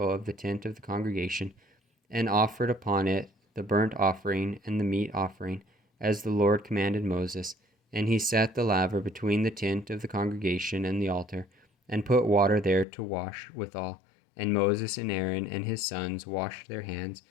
of the tent of the congregation, and offered upon it the burnt offering and the meat offering, as the Lord commanded Moses. And he set the laver between the tent of the congregation and the altar, and put water there to wash withal. And Moses and Aaron and his sons washed their hands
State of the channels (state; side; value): drops out; right; at 12.9 s